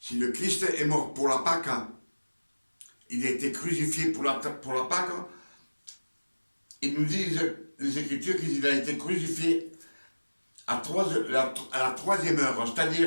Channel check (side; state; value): both; inverted; correlation -1.00